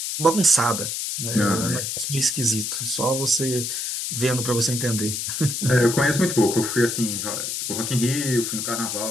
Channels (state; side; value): noise; left; hiss, 3 dB below the sound